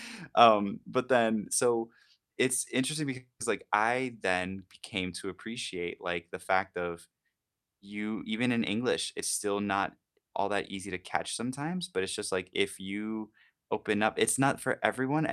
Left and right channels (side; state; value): both; identical; correlation 1.00